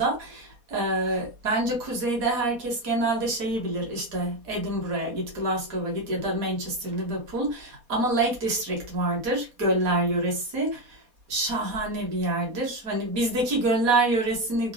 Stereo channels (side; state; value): left; late; 4.2 ms